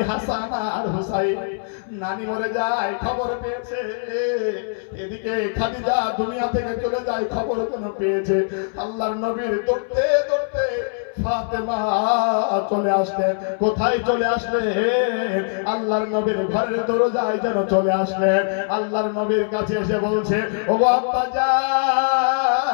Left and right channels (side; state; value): right; silent; 61 dB below the other